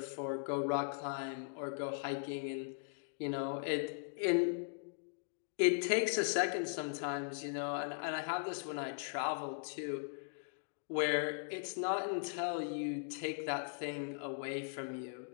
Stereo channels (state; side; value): silent; right; digital silence